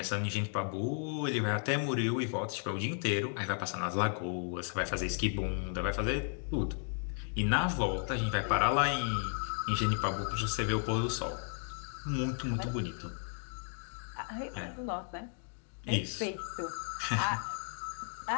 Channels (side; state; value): right; silent; 55 dB below the other